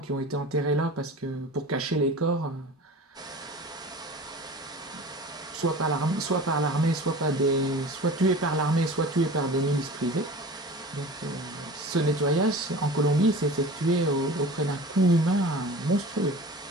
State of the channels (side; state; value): both; normal; correlation 0.38